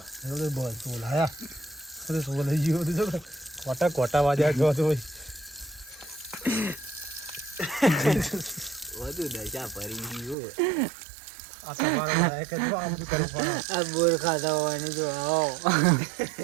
બસ બોલાયા બોલાઈ ગયો બધું. કોટા કોટા વાજ્યા ગયો તો વધુ દશા ફરી ગયું. આ તમારે લાયક જ આમ કરવું પડે. આ બોર ખાતા હોય જો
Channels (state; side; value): drops out; left; at 10.4 s